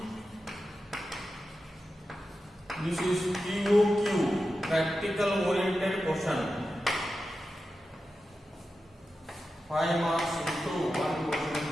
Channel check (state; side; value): normal; both; correlation 0.91